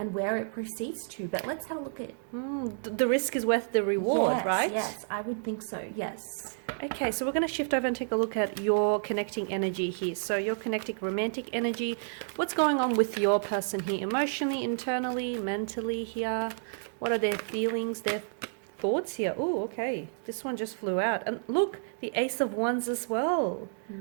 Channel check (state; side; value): silent; left; digital silence